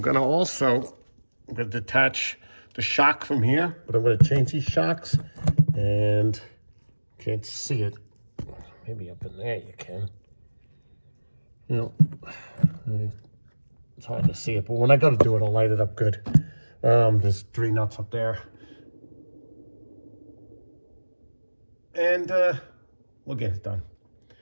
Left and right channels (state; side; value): inverted; both; correlation -1.00